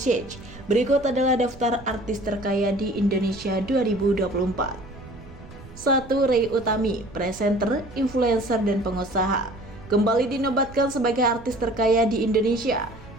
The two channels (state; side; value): noise; right; rumble, 18 dB below the sound